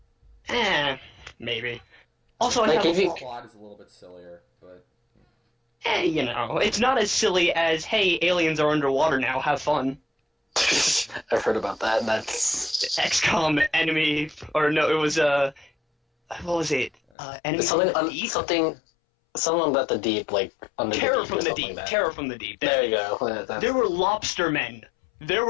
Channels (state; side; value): drops out; right; at 16.9 s